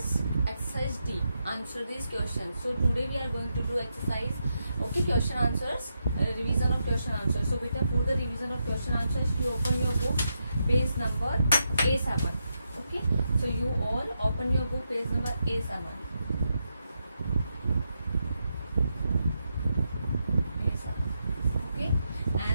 exercise D. Answer these questions. So today we are going to do exercise. Okay, question answers. Revision of question answers. So beta, for the revision of question answers, you open your book, page number A7. Okay. So you all open your book, page number A7. Okay.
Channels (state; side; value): inverted; both; correlation -0.84